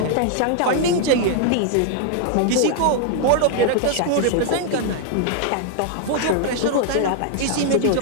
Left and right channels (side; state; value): both; different; correlation 0.00